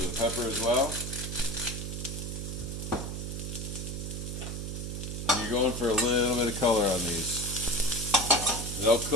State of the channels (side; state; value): right; noise; hum, 5 dB below the sound